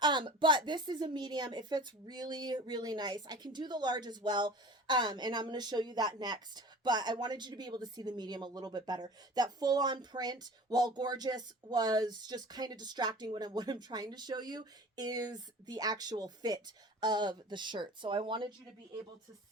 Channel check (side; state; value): both; normal; correlation 0.40